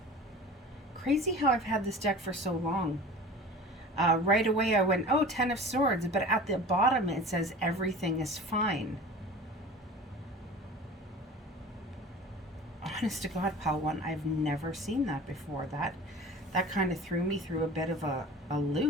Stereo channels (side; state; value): both; normal; correlation 0.39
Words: Crazy how I've had this deck for so long. Right away I went, oh, 10 of Swords, but at the bottom it says everything is fine. Honest to God, pal one, I've never seen that before. That kind of threw me through a bit of a